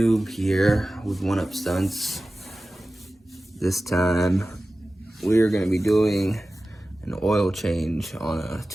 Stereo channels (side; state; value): both; normal; correlation 0.96